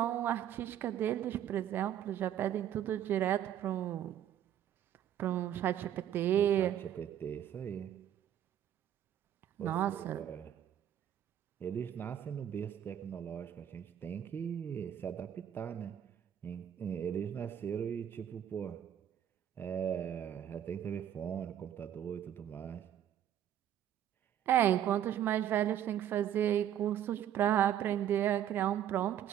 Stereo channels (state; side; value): quieter; left; 10.5 dB